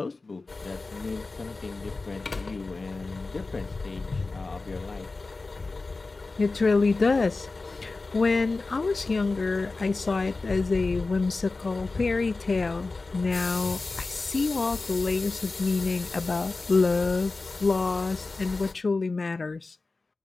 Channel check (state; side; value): quieter; right; 3.6 dB